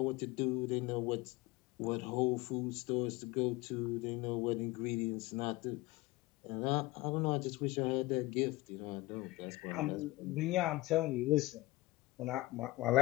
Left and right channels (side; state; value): right; quieter; 19.8 dB